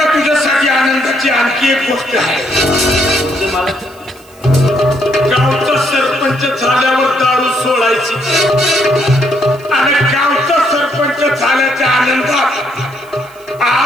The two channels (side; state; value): right; noise; hiss, 27 dB below the sound